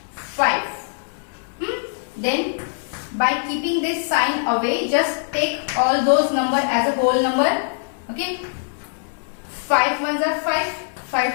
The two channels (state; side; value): silent; right; digital silence